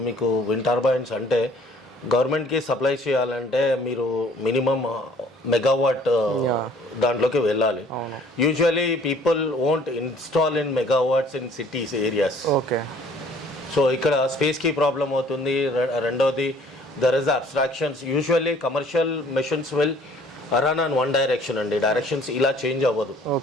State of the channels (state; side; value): normal; both; correlation 0.56